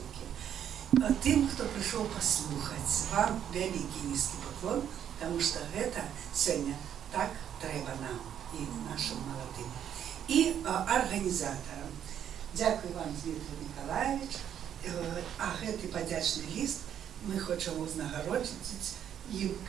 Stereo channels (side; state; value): left; quieter; 9.6 dB